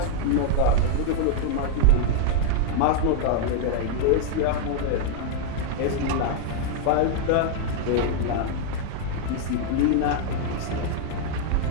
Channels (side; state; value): both; different; correlation 0.00